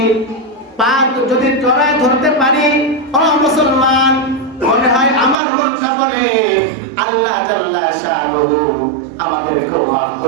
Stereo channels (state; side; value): drops out; left; at 5.4 s